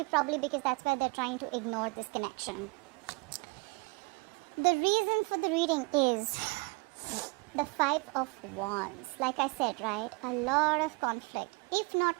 probably because that's where they're trying to ignore this connection. The reason for the reading is the Five of Wands. Like I said, right, a lot of conflict. If not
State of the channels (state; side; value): quieter; left; 29.3 dB